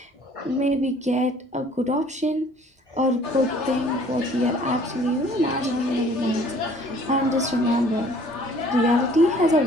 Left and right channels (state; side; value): normal; both; correlation 0.55